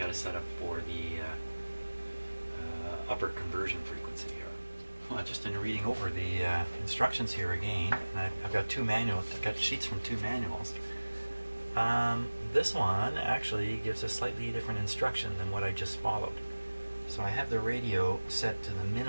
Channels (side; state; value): both; inverted; correlation -1.00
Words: to set up for the upper conversion frequency here. Well, just in reading over the instructions here again, and I've got 2 manuals. I've got sheets from 2 manuals. This one actually gives a slightly different instruction than what I just followed. So I have the radio set to the